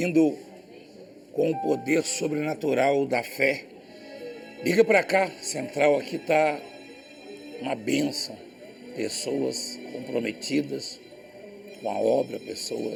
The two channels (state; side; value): identical; both; correlation 1.00